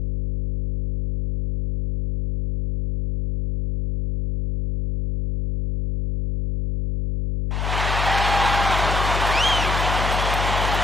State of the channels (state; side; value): noise; left; hum, 1 dB below the sound